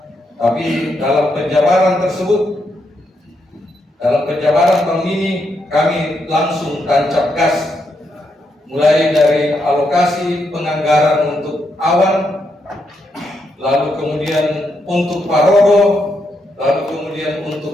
tapi dalam penjabaran tersebut, dalam penjabaran tahun ini kami langsung tancap gas, mulai dari alokasi penganggaran untuk awan, lalu kemudian untuk Parodo, lalu kemudian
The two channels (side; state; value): both; normal; correlation 0.80